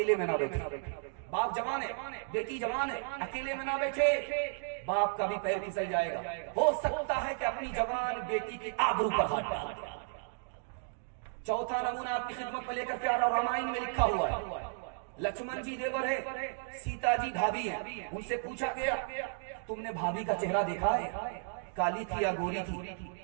میں نہ بیٹھے. باپ جوان ہے, بیٹی جوان ہے, اکیلے میں نہ بیٹھے, باپ کا بھی پیر پھسل جائے گا. ہو سکتا ہے کہ اپنی جوان بیٹی کے آبرو پر ہاتھ ڈال دے. چوتھا نمونہ آپ کی خدمت میں لے کر کے آ رہا ہوں. رامائن میں لکھا ہوا ہے لکشمن جی دیور ہے, سیتا جی بھابھی ہیں. ان سے پوچھا گیا تم نے بھابھی کا چہرہ دیکھا ہے, کالی تھی یا گوری تھی,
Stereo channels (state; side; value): silent; left; digital silence